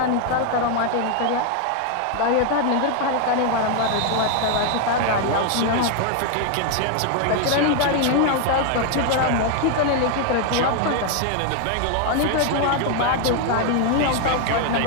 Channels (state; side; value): different; both; correlation 0.00